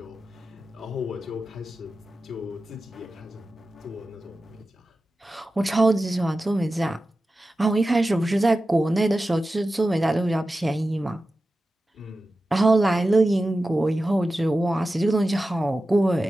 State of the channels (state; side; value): normal; both; correlation 0.94